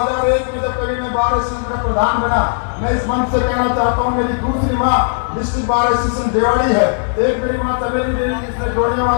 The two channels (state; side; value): silent; right; digital silence